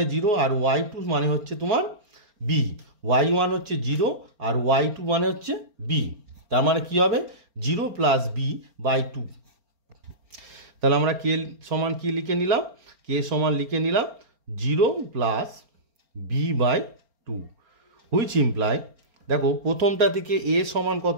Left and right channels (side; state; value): left; late; 4.4 ms